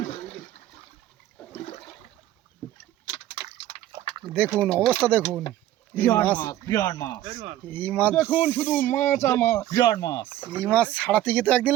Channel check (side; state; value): left; quieter; 13.6 dB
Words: দেখুন অবস্থা দেখুন, এই মাছ দেখুন শুধু মাছ আর মাছ, বিরাট মাছ। এই মাছ ছাড়াতে গিয়ে তো একদিন